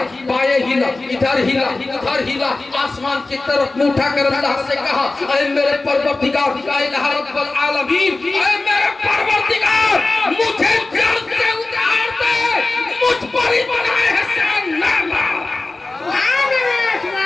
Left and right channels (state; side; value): quieter; right; 3.2 dB